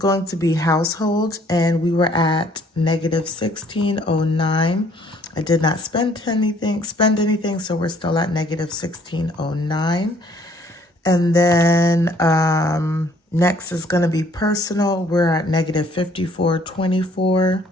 to be household, and we were at negative $16.09. I did not spend anything, so we're still at negative $16.09. And then next is going to be personal. We're at negative $54.24.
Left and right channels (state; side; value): normal; both; correlation 0.61